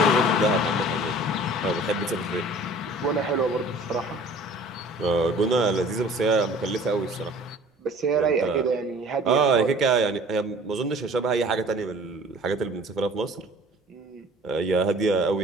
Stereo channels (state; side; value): normal; both; correlation 0.48